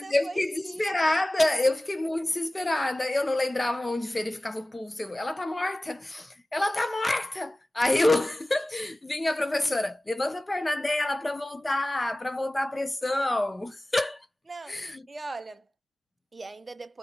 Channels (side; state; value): both; normal; correlation 0.97